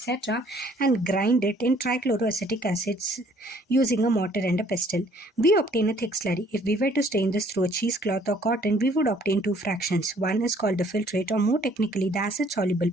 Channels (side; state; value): both; normal; correlation 0.60